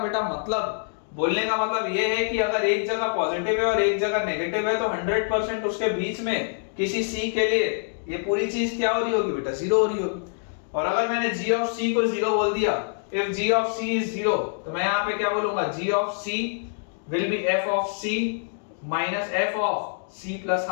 का मतलब ये है कि अगर एक जगह पॉजिटिव है और एक जगह नेगेटिव है तो 100% उसके बीच में किसी c के लिए ये पूरी चीज क्या हो रही होगी बेटा, 0 हो रही होगी। और अगर मैंने g of c को 0 बोल दिया, if g of c is 0 तो मैं यहाँ पे क्या बोलूंगा, g of c will be f of c minus f of c plus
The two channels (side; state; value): right; silent; digital silence